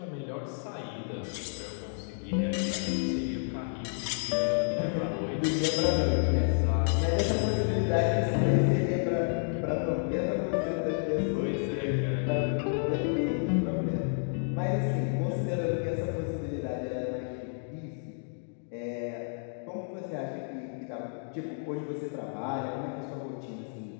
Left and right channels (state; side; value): silent; right; digital silence